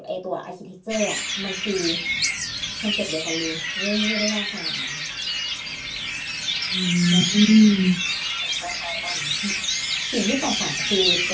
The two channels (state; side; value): identical; both; correlation 1.00